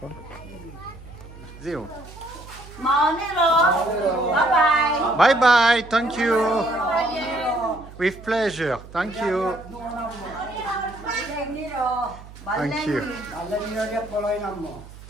Zero. Maoniro. Bye-bye. Bye bye. Thank you. With pleasure. Thank you. Thank you.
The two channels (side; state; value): right; noise; hum, 17 dB below the sound